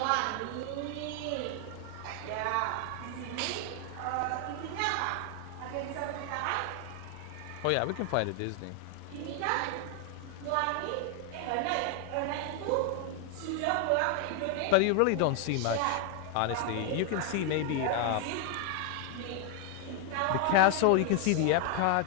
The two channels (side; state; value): both; different; correlation 0.00